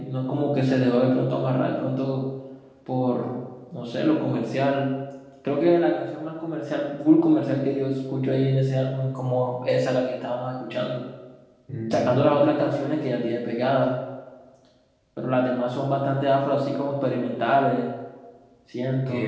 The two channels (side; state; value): both; identical; correlation 1.00